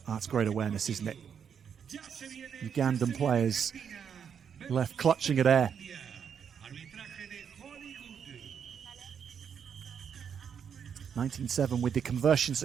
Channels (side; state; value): left; quieter; 7.6 dB